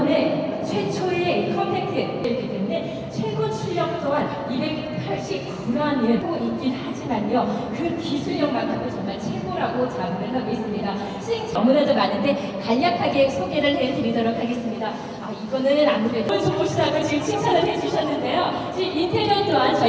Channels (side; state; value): both; identical; correlation 1.00